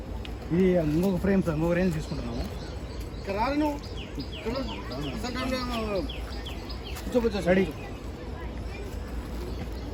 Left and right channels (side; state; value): both; identical; correlation 1.00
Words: ఇది ఇంకొక ఫ్రేమ్ సార్, ఇంకొక రేంజ్ తీసుకుంటున్నాము. రెడీ.